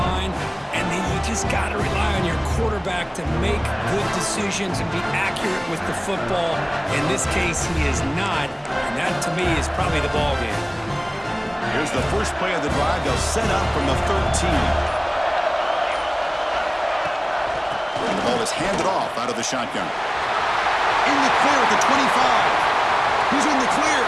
And then you just got to rely on your quarterback to make good decisions and be accurate with the football. In this case, he is not. And that, to me, is probably the ball game. Here's the first play of the drive. They'll set up from the 13. And the ball is handed off out of the shotgun. In the clear at the 25. Who's in the clear?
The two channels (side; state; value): both; identical; correlation 1.00